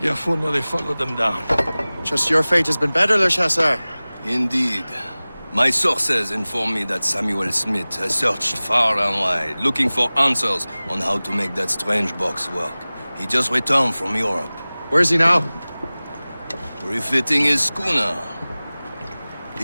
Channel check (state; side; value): inverted; both; correlation -0.99